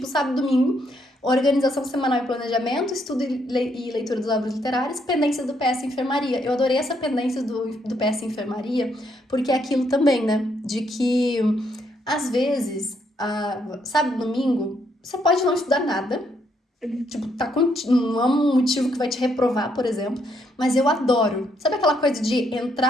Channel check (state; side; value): normal; both; correlation 0.74